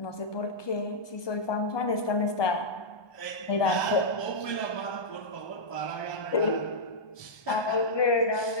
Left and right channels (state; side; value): late; right; 1.2 ms